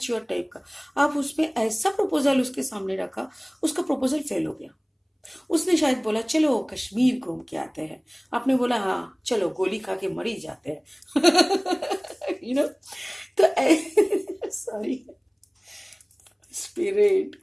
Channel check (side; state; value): both; identical; correlation 1.00